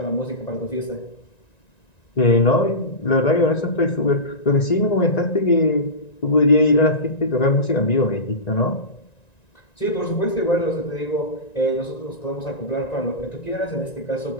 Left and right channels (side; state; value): right; late; 1.9 ms